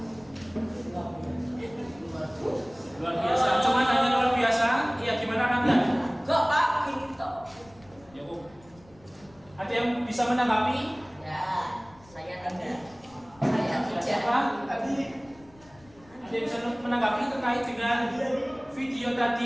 Luar biasa. Cuma hanya luar biasa. Iya, gimana kalian? Enggak, Pak, gini toh. Ya, ada yang bisa menanggapi? Ya, saya tidak. Saya tidak. Siapa? Ada yang bisa menanggapi terkait dengan video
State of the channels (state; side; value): noise; left; rumble, 27 dB below the sound